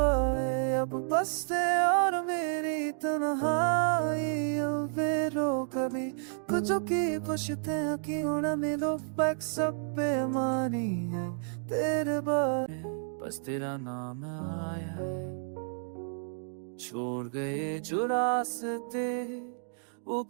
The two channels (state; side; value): silent; left; digital silence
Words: अब बसते और मेरी तन्हाई रो कभी कुछ की पुछते हैं कि उड़ा मेरे पैक सब बेमानी है तेरे बारे। बस तेरा नाम आया है, छोड़ गए जो रास्ते वो